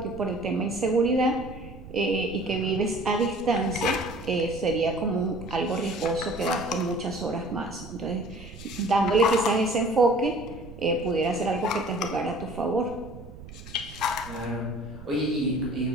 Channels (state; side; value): noise; right; rumble, 15 dB below the sound